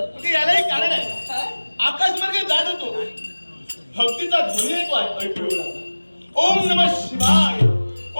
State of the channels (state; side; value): inverted; both; correlation -1.00